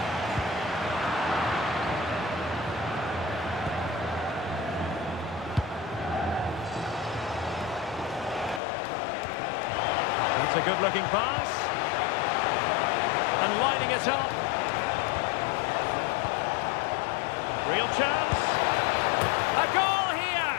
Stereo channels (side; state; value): right; drops out; at 8.6 s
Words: That's a good-looking pass. And lining it up. Real chance. A goal here,